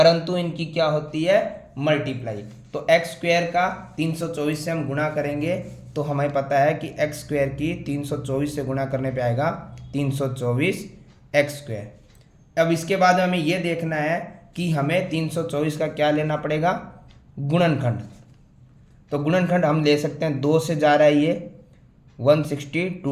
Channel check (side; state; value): both; identical; correlation 1.00